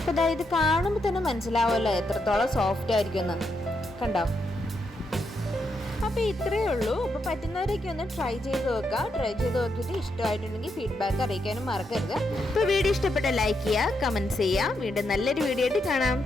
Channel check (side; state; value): both; normal; correlation 0.81